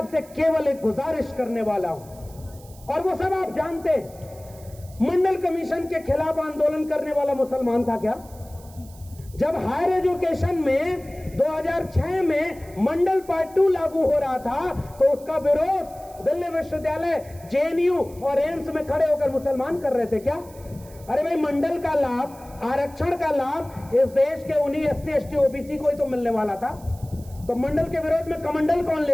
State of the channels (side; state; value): right; noise; hiss, 23 dB below the sound